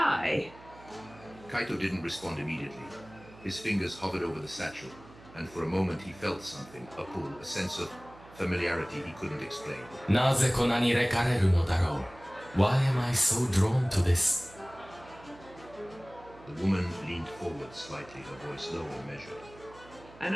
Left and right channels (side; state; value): right; noise; hum, 21 dB below the sound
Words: Kaito didn't respond immediately. His fingers hovered over the satchel, and for a moment he felt something, a pull, a sense of familiarity he couldn't explain. なぜこんなに惹かれるのだろう? Why am I so drawn to this? The woman leaned forward slightly, her voice low and measured. あ